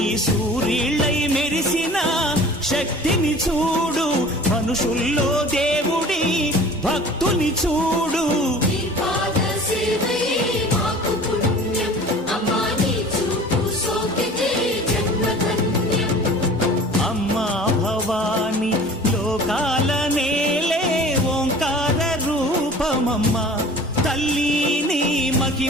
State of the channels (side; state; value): both; normal; correlation 0.44